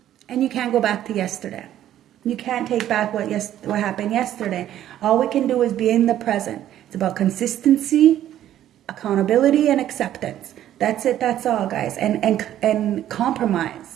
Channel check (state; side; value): quieter; left; 11.9 dB